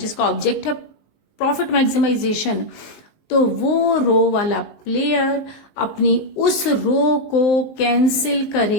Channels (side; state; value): right; late; 19 ms